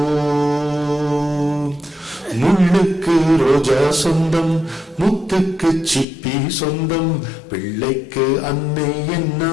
முள்ளுக்கு ரோஜா சொந்தம், முத்துக்கு சிப்பி சொந்தம், பிள்ளைக்கு அன்னை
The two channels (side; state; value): right; drops out; at 6.1 s